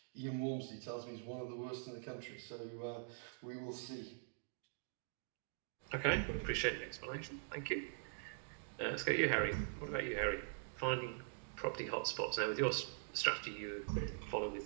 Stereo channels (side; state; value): left; silent; digital silence